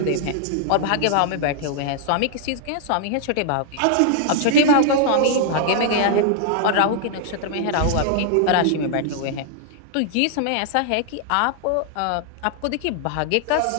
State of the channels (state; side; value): different; both; correlation -0.01